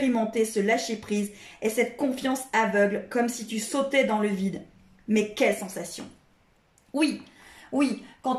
ce lâcher-prise et cette confiance aveugle, comme si tu sautais dans le vide. Mais quelle sensation! Oui, oui,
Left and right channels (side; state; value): both; identical; correlation 1.00